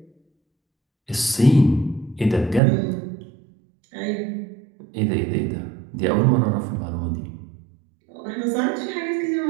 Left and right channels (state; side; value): drops out; left; at 2.6 s